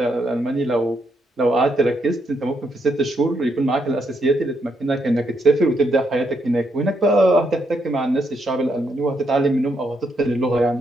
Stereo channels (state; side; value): normal; both; correlation 0.77